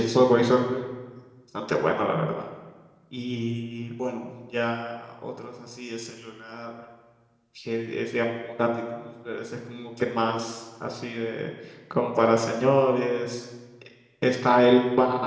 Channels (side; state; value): both; identical; correlation 1.00